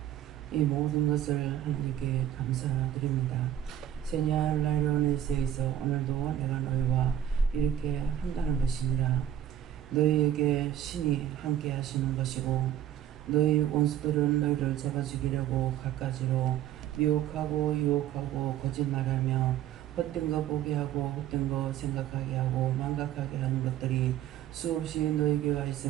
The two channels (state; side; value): quieter; left; 11.1 dB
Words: 이 모든 것을 하나님께 감사드립니다. 세냐 라이로네스에서 오늘도 내가 너희와 이렇게 한다는 것이니라. 너희에게 신이 함께 하시는 것이고 너희 원수들은 너희를 잡아 죽이려고 갖가지로 미혹하고 유혹하고 거짓말하며 헛된 거 보게 하고 헛된 거 생각하게 하고 망각하게 하는 것들이 수없이 너희에게 와